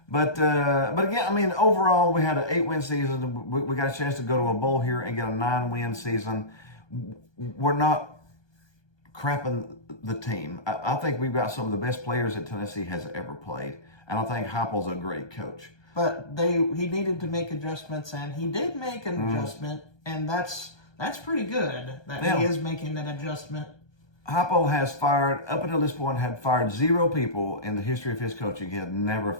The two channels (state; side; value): late; right; 1.2 ms